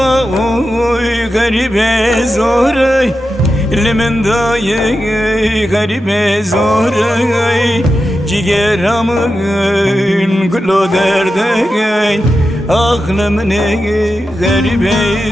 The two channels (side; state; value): both; normal; correlation 0.90